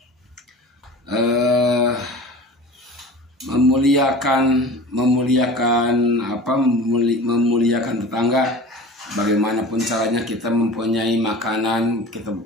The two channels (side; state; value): both; normal; correlation 0.38